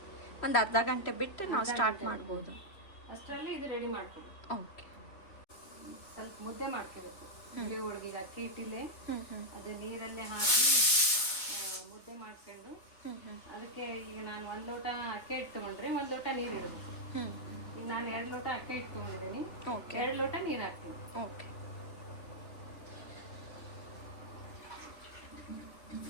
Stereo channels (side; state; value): right; late; 3.5 ms